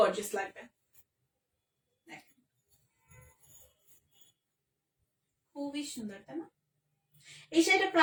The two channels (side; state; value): both; identical; correlation 1.00